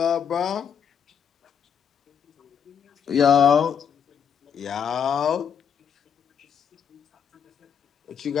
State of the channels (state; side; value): quieter; right; 7.6 dB